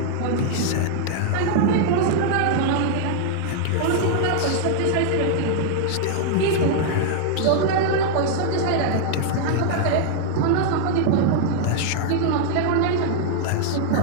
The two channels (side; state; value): both; different; correlation 0.00